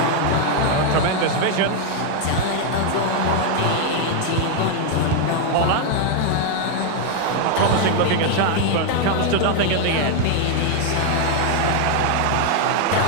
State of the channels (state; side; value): different; both; correlation 0.00